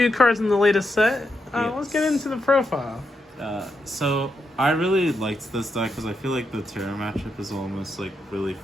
cards in the latest set. Yes. Let's get into the profile. So I really liked this deck because I feel like the Terra matchup is almost like really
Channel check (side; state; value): both; normal; correlation 0.83